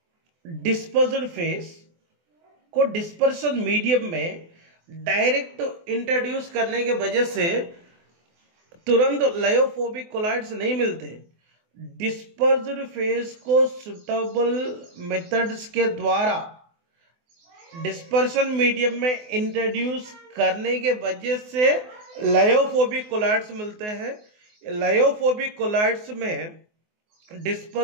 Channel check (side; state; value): left; late; 24 ms